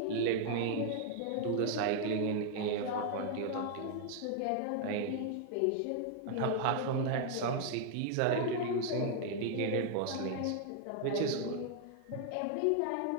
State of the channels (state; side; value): different; both; correlation 0.00